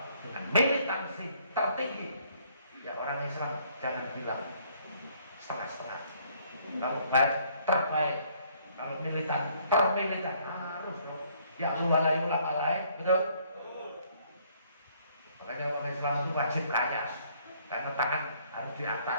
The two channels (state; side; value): inverted; both; correlation -0.64